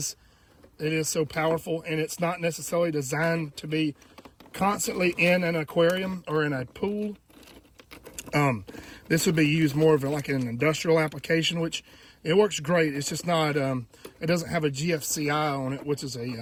so powerful, and it's not necessarily designed to be constantly in an aquarium or in a pool. This would be used more of like an industrial application, which it works great. It's just not, it doesn't have a GFCI on it, which is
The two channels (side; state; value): both; identical; correlation 1.00